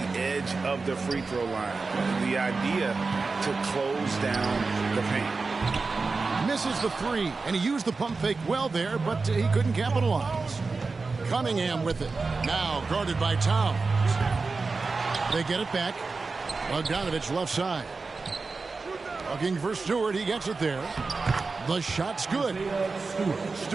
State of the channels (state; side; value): quieter; left; 4.1 dB